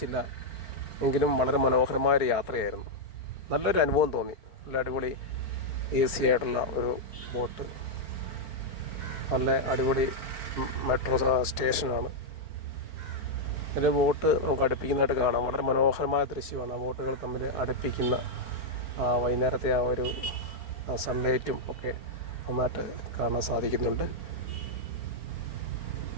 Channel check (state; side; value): late; right; 4.4 ms